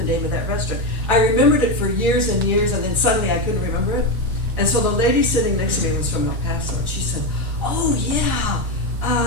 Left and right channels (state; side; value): normal; both; correlation 0.12